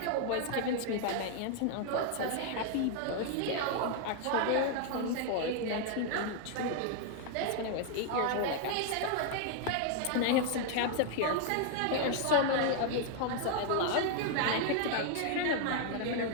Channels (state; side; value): different; both; correlation 0.00